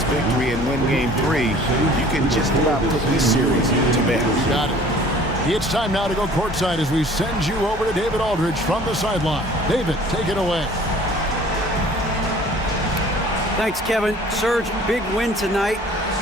victory and win game 3, you can just about put this series to bed. Got it. It's time now to go courtside as we send you over to David Aldridge from the sideline. David, take it away. Thanks, Kevin. Serge, big win tonight.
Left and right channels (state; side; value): normal; both; correlation 0.50